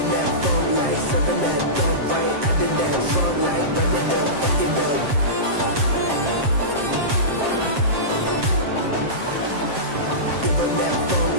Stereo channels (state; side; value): late; left; 7.5 ms